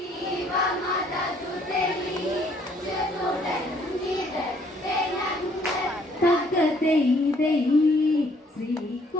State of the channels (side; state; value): both; normal; correlation 0.63